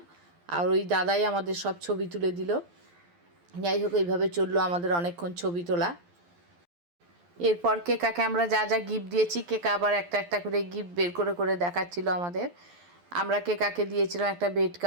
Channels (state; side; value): late; left; 12 ms